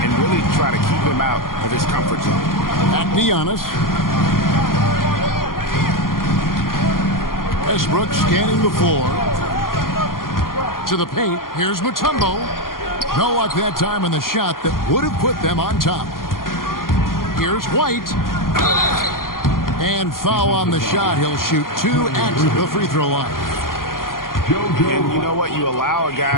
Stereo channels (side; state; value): right; late; 0.91 ms